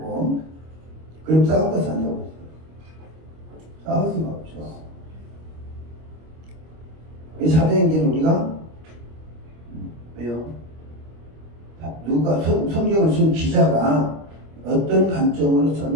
그럼 싸울 것이 안 되고 있어요. 싸울 수가 없죠. 이 사도행전은 우리가, 왜요? 누가, 성경을 쓴 기자가 어떤 관점으로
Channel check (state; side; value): late; left; 25 ms